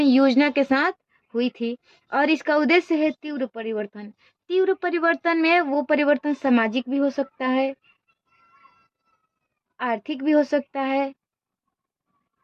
योजना के साथ हुई थी, और इसका उद्देश्य है तीव्र परिवर्तन। तीव्र परिवर्तन में वो परिवर्तन सामाजिक भी हो सकता है, आर्थिक भी हो सकता है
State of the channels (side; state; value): both; identical; correlation 1.00